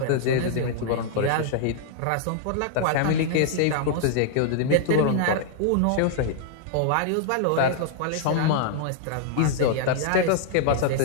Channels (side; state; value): both; different; correlation -0.01